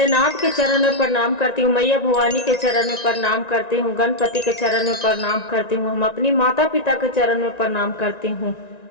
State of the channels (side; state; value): right; late; 1.9 ms